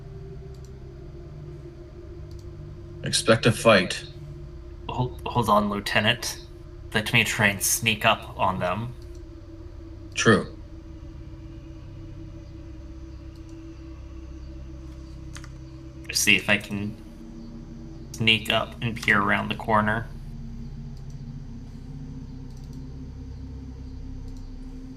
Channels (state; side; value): identical; both; correlation 1.00